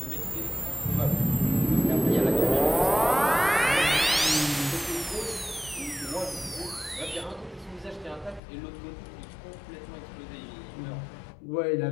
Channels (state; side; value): drops out; right; at 8.4 s